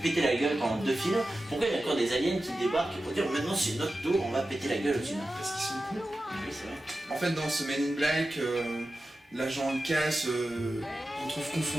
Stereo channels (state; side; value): normal; both; correlation 0.93